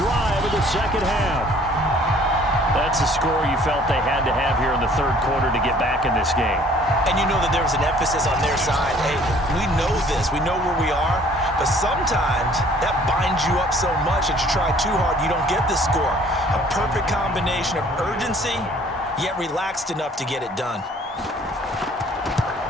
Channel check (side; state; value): both; normal; correlation 0.56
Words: of the second half. That's a score you felt they had to have here in the third quarter to get back in this game. And you know that there was an emphasis on their side. Hey, we know this. We know where we are. But sometimes that binds you up so much that you try too hard, you don't get the score. A perfect combination of urgency, yet relaxed enough to get it done.